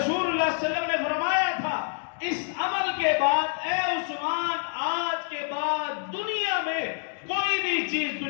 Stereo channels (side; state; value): right; silent; 55 dB below the other